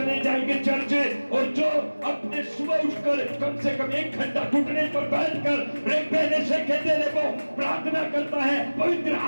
जाएंगे चर्च। और जो अपने सुबह उठकर कम से कम 1 घंटा घुटने पर बैठकर प्रार्थना करता है, पवित्र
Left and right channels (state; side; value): inverted; both; correlation -1.00